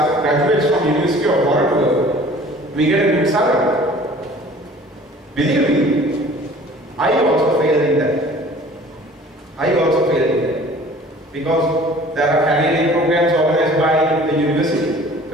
graduates from University of Waterloo, we get a good salary. Believe me, I also failed in that. Because there are career programs organized by the university.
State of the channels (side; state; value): both; normal; correlation 0.48